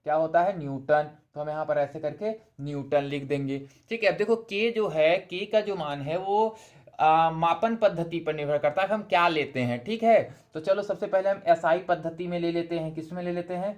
क्या होता है, न्यूटन। तो हम यहाँ पर ऐसे करके न्यूटन लिख देंगे, ठीक है। अब देखो के जो है, के का जो मान है वो मापन पद्धति पर निर्भर करता है, हम क्या लेते हैं, ठीक है। तो चलो सबसे पहले हम एसआई पद्धति में ले लेते हैं, किस में ले लेते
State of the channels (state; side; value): identical; both; correlation 1.00